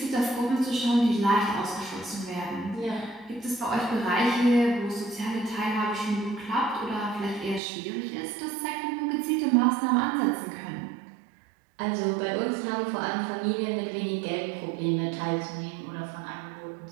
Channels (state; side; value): drops out; left; at 7.6 s